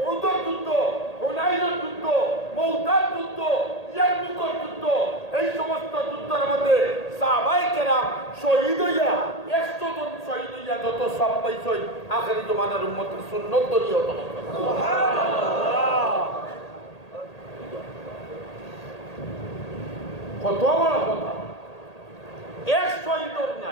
যুদ্ধ হুনাইনের যুদ্ধ মৌতার যুদ্ধ ইয়ারমুকের যুদ্ধ এই সমস্ত যুদ্ধের মধ্যে সাহাবায়ে কেরাম শহীদ হইয়া 100 জন শহীদ হইয়া যত সব পাইছে আখেরি জমানার উম্মতের সুন্নত দরিয়া হতো। সুবহানাল্লাহ। কত বড় কথা এক শহীদর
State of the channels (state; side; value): late; right; 1.8 ms